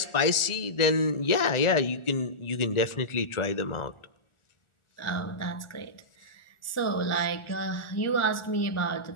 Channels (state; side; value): late; right; 1.4 ms